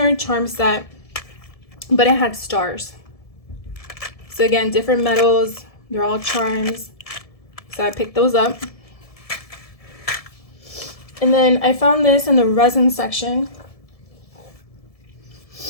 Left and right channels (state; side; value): late; right; 1.7 ms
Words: charm set, but it had stars. So again, different metals. They're all charms. So I picked those up. And then I found this in the resin section.